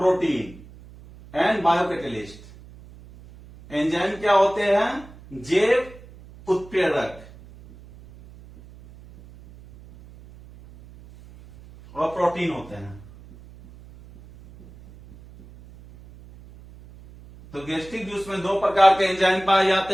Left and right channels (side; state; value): right; noise; hum, 21 dB below the sound